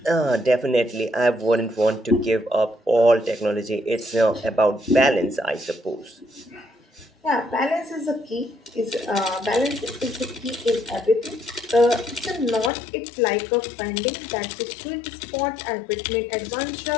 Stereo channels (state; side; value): drops out; right; at 12.7 s